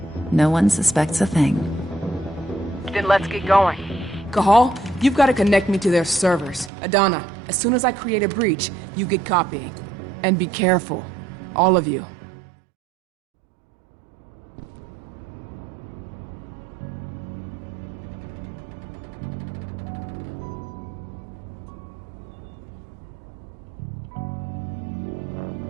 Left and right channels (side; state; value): left; drops out; at 6.7 s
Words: No one suspects a thing. Then let's get going. Cahal, you've got to connect me to their servers. Adana, as soon as I create a breach, you get copying. And be careful. All of you.